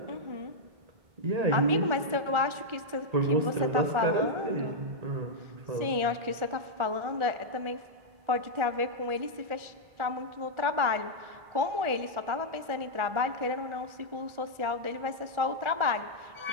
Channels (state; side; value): late; left; 1.4 ms